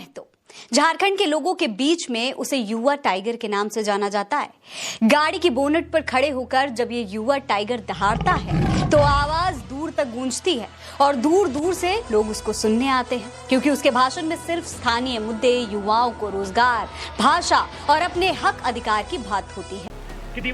झारखंड के लोगों के बीच में उसे युवा टाइगर के नाम से जाना जाता है। गाड़ी की बोनट पर खड़े होकर जब ये युवा टाइगर दहाड़ता है तो आवाज दूर तक गूंजती है और दूर दूर से लोग उसको सुनने आते हैं, क्योंकि उसके भाषण में सिर्फ स्थानीय मुद्दे, युवाओं को रोजगार, भाषा और अपने हक अधिकार की बात होती है। कि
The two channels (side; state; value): both; identical; correlation 1.00